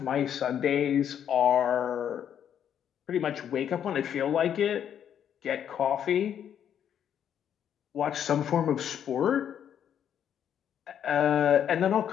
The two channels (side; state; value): right; quieter; 9.2 dB